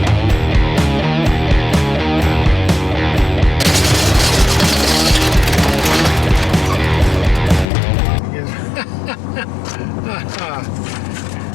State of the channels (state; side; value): drops out; right; at 7.7 s